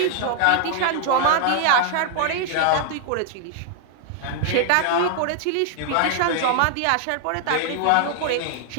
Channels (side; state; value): both; different; correlation 0.00